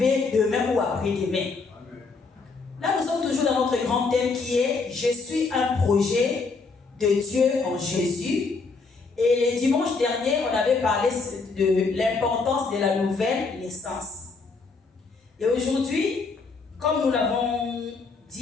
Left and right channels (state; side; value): quieter; right; 4.3 dB